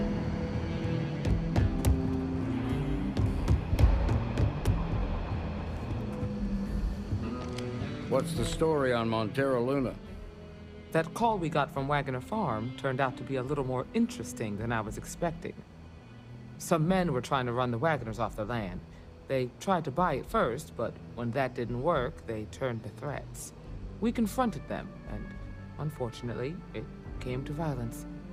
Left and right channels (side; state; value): both; identical; correlation 1.00